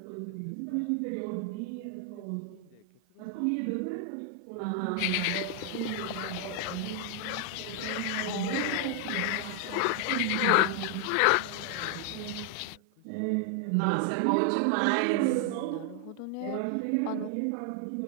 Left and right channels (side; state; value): both; different; correlation 0.00